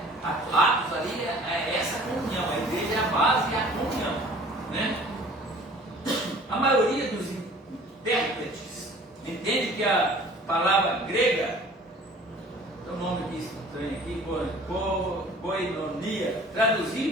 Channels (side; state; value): both; normal; correlation 0.49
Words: Atos ali é essa comunhão. A igreja é a base e a comunhão, né? A maioria dos intérpretes entende que a palavra grega, tem um nome aqui estranho aqui, koinonia,